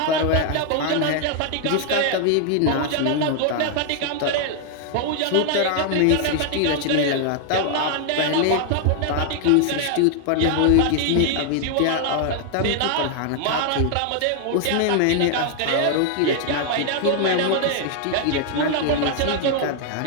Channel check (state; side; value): different; both; correlation 0.00